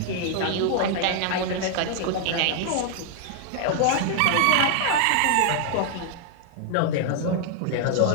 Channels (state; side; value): different; both; correlation 0.00